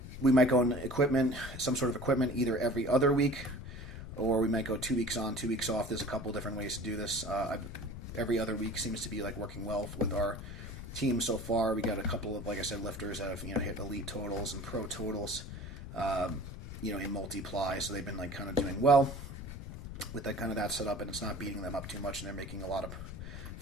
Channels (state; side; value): noise; left; rumble, 9 dB below the sound